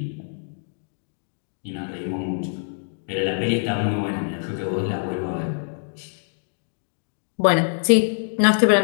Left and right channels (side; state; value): right; silent; digital silence